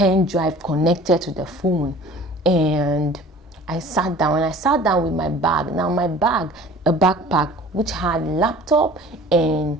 drive connected to the phone, and I sat down. And I sat down with my bag. Now my bag, a backpack which had laptop and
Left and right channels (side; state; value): both; normal; correlation 0.46